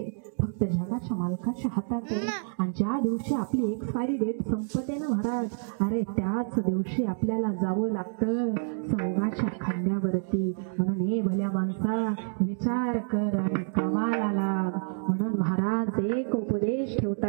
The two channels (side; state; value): left; silent; digital silence